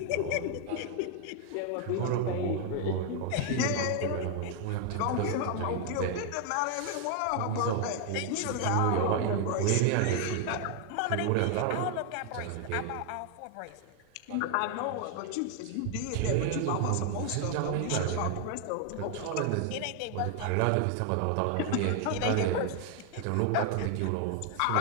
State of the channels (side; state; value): both; different; correlation 0.00